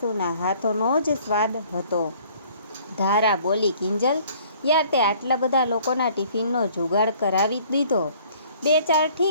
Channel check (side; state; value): both; inverted; correlation -0.56